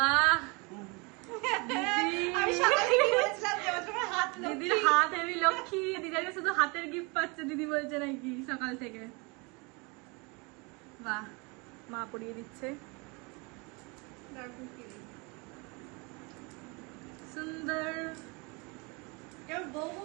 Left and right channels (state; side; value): quieter; left; 29.0 dB